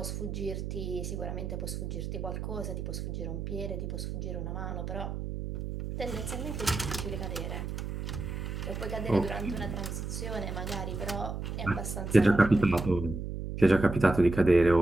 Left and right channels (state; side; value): noise; right; hum, 5 dB below the sound